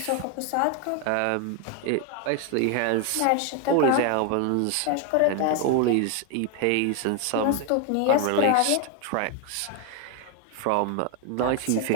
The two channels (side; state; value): both; different; correlation 0.01